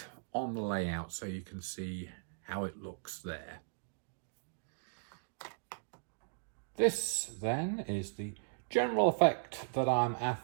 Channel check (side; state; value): left; silent; digital silence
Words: on the layout so you can see how it looks there. This then is the general effect that I'm